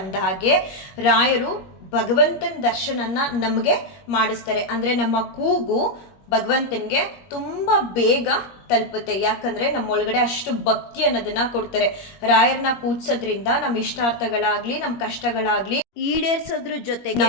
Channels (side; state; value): right; late; 21 ms